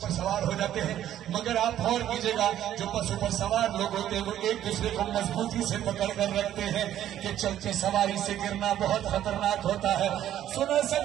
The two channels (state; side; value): quieter; left; 11.7 dB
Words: पर सवार हो जाते हैं, मगर आप गौर कीजिएगा जो बसों पर सवार लोग होते हैं वो एक दूसरे को मजबूती से पकड़ कर रखते हैं कि चलते सवारी से गिरना बहुत खतरनाक होता है। सुनो